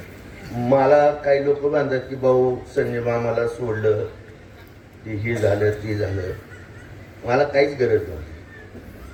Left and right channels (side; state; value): both; identical; correlation 1.00